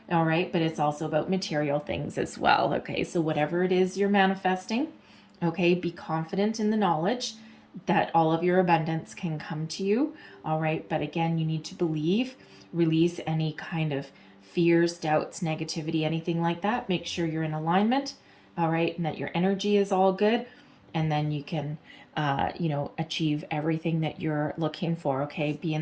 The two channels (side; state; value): both; identical; correlation 1.00